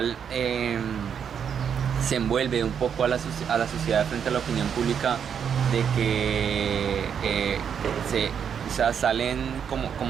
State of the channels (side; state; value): left; quieter; 7.7 dB